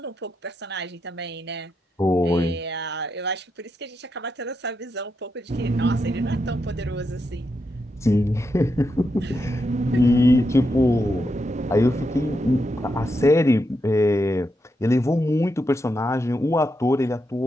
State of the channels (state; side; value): normal; both; correlation 0.84